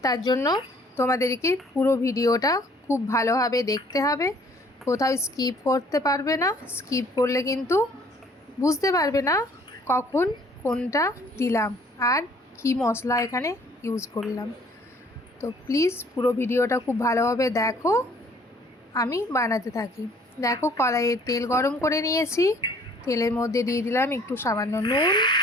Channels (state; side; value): normal; both; correlation 0.57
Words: তার জন্য তোমাদেরকে পুরো ভিডিওটা খুব ভালোভাবে দেখতে হবে, কোথাও স্কিপ করতে পারবে না। স্কিপ করলে কিন্তু বুঝতে পারবে না কখন কোনটা দিলাম আর কি মশলা এখানে ইউজ করলাম। তো প্লিজ পুরো ভিডিওটা খুব ভালোভাবে দেখো। আমি বানাতে থাকি। দেখো, কড়াইয়ে তেল গরম করে নিয়েছি। তেলের মধ্যে দিয়ে দিলাম একটু সামান্য নুন,